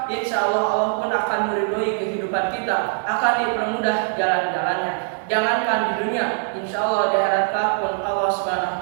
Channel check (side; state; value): left; silent; digital silence